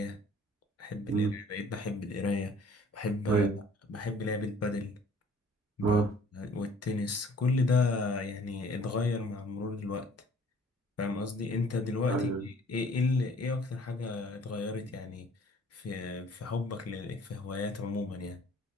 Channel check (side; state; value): both; normal; correlation 0.54